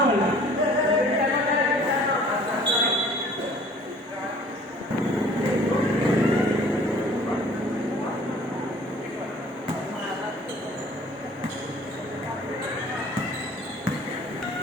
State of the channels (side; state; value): both; normal; correlation 0.51